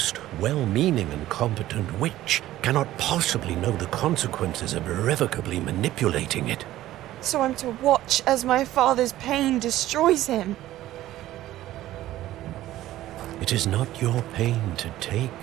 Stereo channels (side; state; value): left; quieter; 14.6 dB